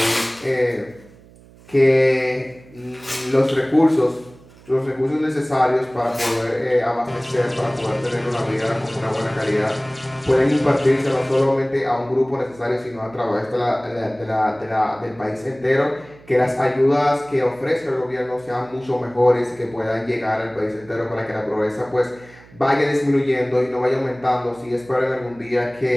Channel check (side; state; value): right; noise; hum, 24 dB below the sound